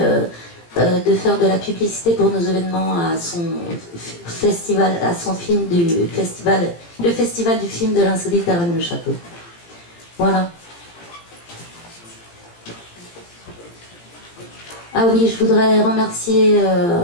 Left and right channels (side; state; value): right; late; 17 ms